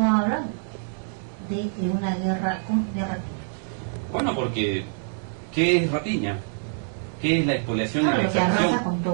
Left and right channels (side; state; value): left; silent; digital silence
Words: hablan de una guerra de Rapiña. Bueno, porque ¿qué es Rapiña? ¿Qué es la expoliación y la lo que arrasa con